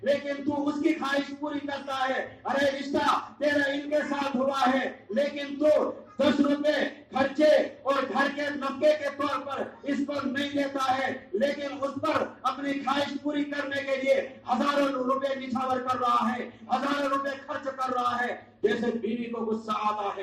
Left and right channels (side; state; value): both; identical; correlation 1.00